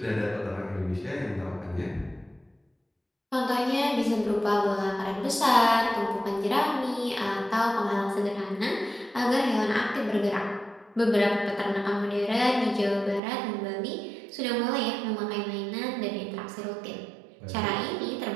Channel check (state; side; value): drops out; left; at 13.2 s